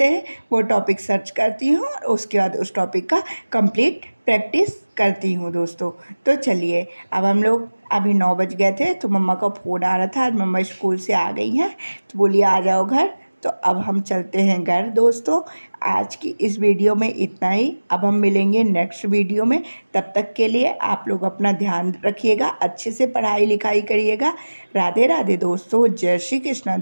हैं वो टॉपिक सर्च करती हूँ, और उसके बाद उस टॉपिक का कंप्लीट प्रैक्टिस करती हूँ दोस्तों। तो चलिए, अब हम लोग अभी 9 बज गए थे, तो मम्मा का फ़ोन आ रहा था, आज मम्मा स्कूल से आ गई हैं, तो बोली आ जाओ घर। तो अब हम चलते हैं घर दोस्तों। आज की इस वीडियो में इतना ही, अब हम मिलेंगे नेक्स्ट वीडियो में। तब तक के लिए आप लोग अपना ध्यान रखिएगा, अच्छे से पढ़ाई लिखाई करिएगा। राधे राधे दोस्तों, जय श्री कृष्णा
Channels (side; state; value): both; inverted; correlation -1.00